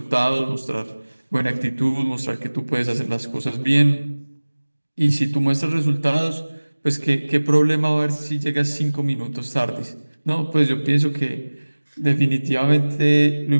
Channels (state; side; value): inverted; both; correlation -1.00